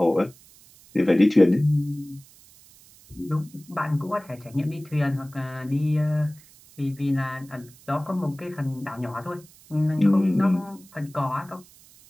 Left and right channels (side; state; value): right; noise; hiss, 25 dB below the sound